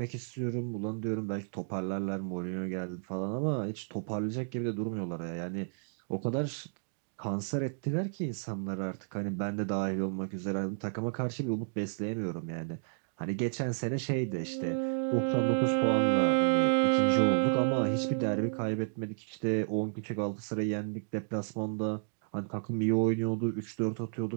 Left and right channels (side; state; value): left; silent; digital silence